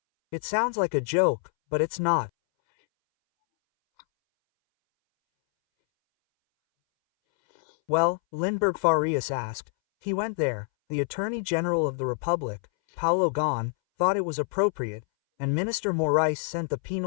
It sounds like a joke, but it's not. Well, Lindbergh Farias asked. He went there. The Attorney General of the Republic, Paulo Gon, thought it was appropriate, and Minister Moraes sent the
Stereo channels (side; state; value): right; silent; 61 dB below the other